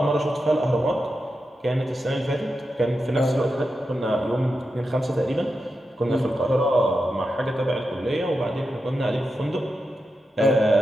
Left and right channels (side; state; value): both; normal; correlation 0.89